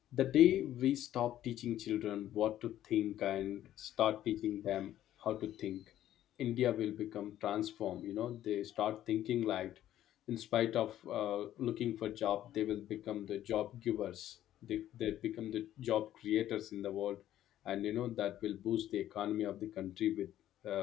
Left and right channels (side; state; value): right; quieter; 12.5 dB